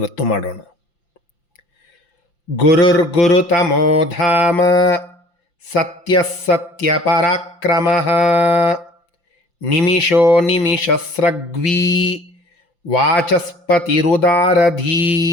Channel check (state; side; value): late; right; 5.8 ms